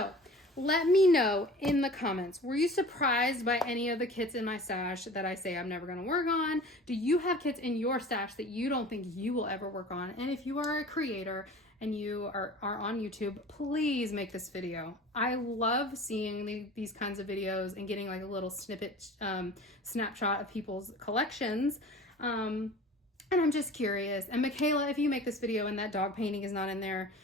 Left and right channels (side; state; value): both; normal; correlation 0.41